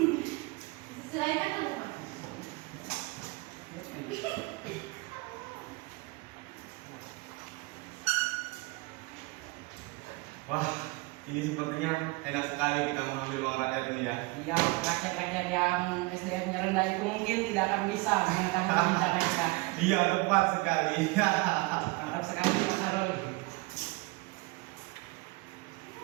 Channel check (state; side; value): quieter; left; 24.5 dB